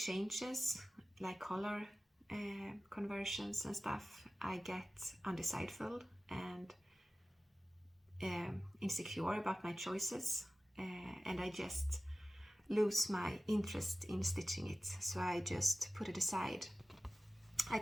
like color conversions and stuff, I get undecideful and insecure about my choices, and I just lose my interest in stitching it, so I just put it aside. I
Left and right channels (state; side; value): normal; both; correlation 0.97